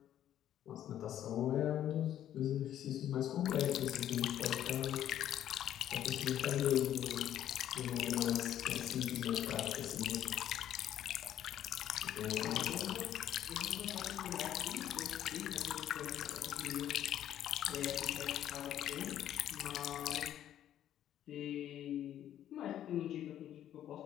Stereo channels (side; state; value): right; quieter; 11.2 dB